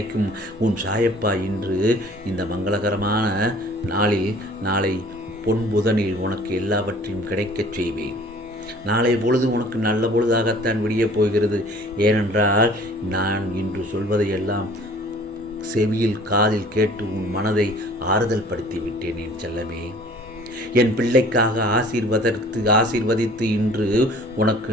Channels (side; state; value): both; normal; correlation 0.51